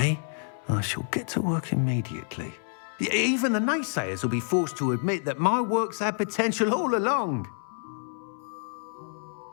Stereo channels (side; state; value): right; silent; 59 dB below the other